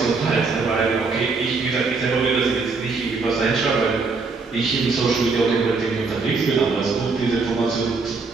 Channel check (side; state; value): left; quieter; 4.3 dB